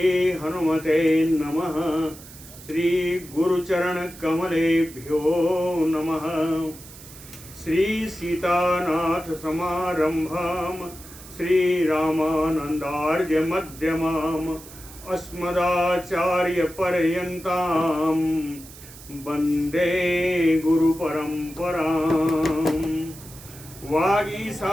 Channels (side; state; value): right; noise; hiss, 18 dB below the sound